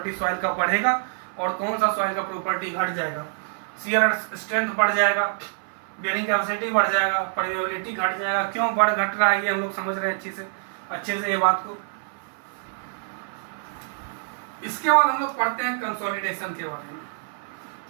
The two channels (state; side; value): silent; left; 57 dB below the other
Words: सॉइल का बढ़ेगा और कौन सा सॉइल का प्रॉपर्टी घट जाएगा। शियर स्ट्रेंथ बढ़ जाएगा, बेयरिंग कैपेसिटी बढ़ जाएगा, परमेबिलिटी घट जाएगा। क्यों बढ़ घट रहा है ये हम लोग समझ रहे हैं अच्छे से ये बात को। इसके बाद हम लोग पढ़ते हैं कंसोलिडेशन के बारे में।